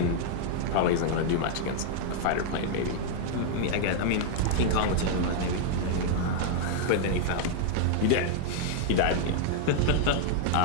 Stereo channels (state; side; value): different; both; correlation 0.00